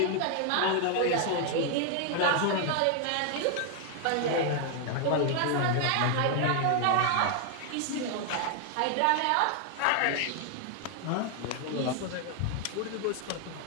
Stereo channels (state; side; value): different; both; correlation 0.00